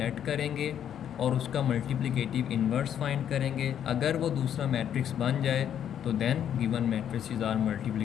करेंगे और उसका मल्टीप्लिकेटिव इन्वर्स फाइंड करेंगे। अगर वो दूसरा मैट्रिक्स बन जाए तो then given matrices are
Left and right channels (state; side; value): quieter; right; 9.5 dB